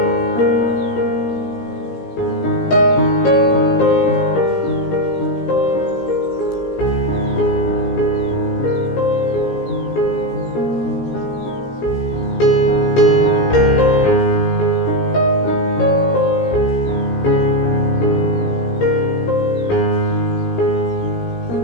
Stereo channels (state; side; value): late; right; 17 ms